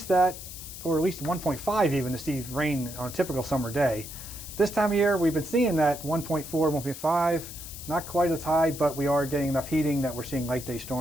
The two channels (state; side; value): noise; left; hiss, 12 dB below the sound